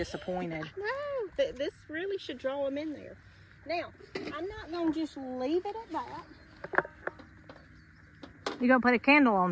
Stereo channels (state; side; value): identical; both; correlation 1.00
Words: No, this really should draw them in there. Now, I'm not going to just leave it at that. You're going to put a candle